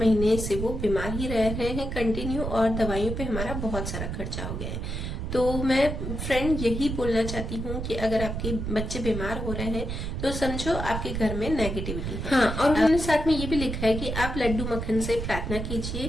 से वो बीमार ही रह रहे हैं कंटिन्यू, और दवाइयों पे हमारा बहुत सारा खर्चा हो गया है। तो मैं फ्रेंड यही बोलना चाहती हूँ कि अगर आपके बच्चे बीमार हो रहे हैं तो समझो आपके घर में नेगेटिविटी है। हाँ, और उन्होंने साथ में ये भी लिखा है कि आप लड्डू मक्खन से प्रार्थना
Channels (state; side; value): noise; right; rumble, 4 dB below the sound